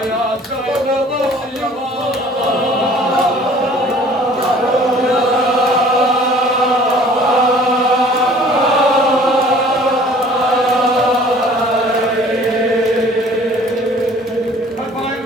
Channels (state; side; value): normal; both; correlation 0.51